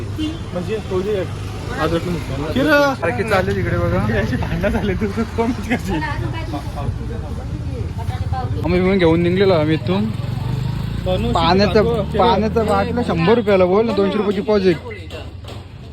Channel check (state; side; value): identical; both; correlation 1.00